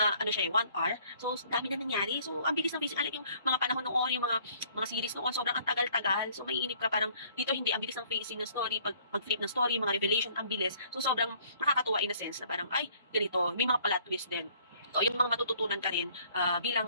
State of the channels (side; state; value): both; inverted; correlation -0.58